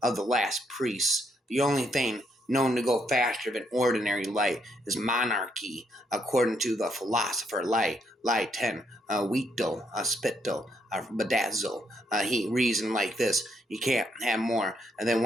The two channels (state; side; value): normal; both; correlation 0.75